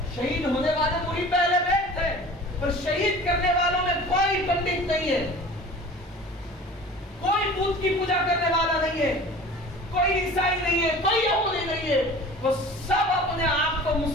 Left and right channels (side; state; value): both; normal; correlation 0.42